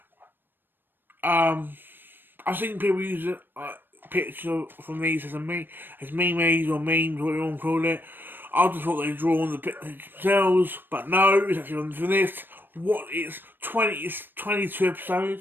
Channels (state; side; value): late; left; 0.095 ms